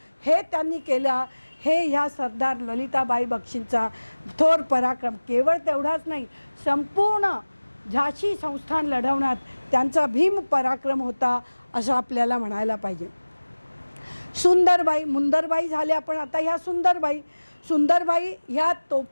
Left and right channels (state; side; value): inverted; both; correlation -1.00